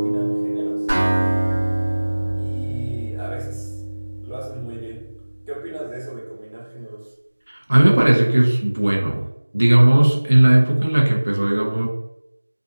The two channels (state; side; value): inverted; both; correlation -1.00